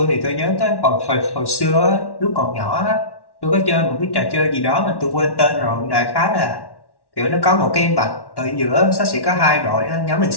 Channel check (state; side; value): late; right; 1.1 ms